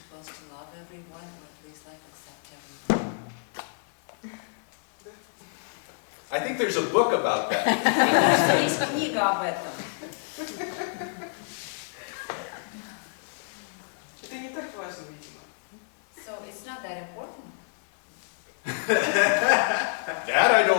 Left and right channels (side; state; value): right; silent; digital silence